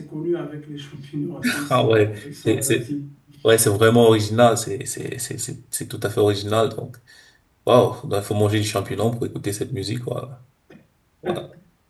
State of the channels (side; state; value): both; identical; correlation 1.00